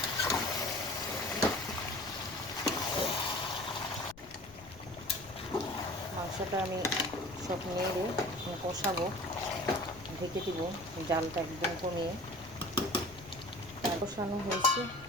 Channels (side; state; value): left; noise; rumble, 19 dB below the sound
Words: মাংসটা আমি সব নেড়ে কষাবো, ঢেকে দিব, জালটা একদম কমিয়ে। কষানো হয়েছে,